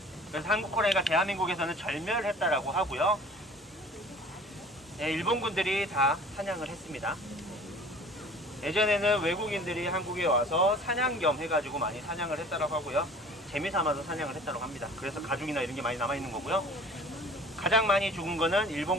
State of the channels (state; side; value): normal; both; correlation 0.46